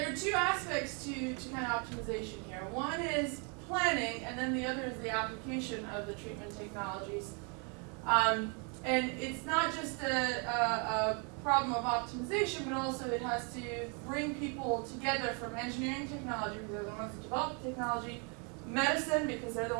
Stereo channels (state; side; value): quieter; left; 36.1 dB